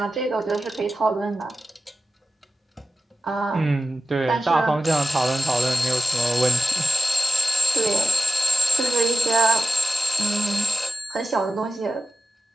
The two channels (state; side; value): normal; both; correlation 0.93